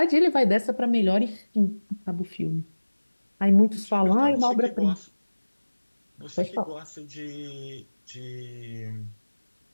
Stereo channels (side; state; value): both; inverted; correlation -1.00